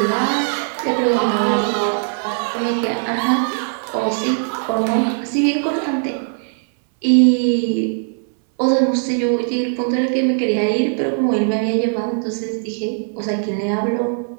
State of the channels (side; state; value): left; silent; 63 dB below the other